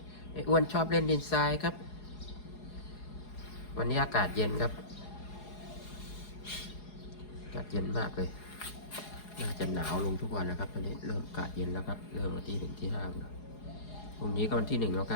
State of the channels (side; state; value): right; late; 4.8 ms